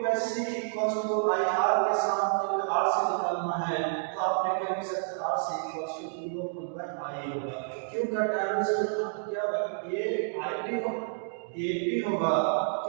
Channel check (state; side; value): silent; left; digital silence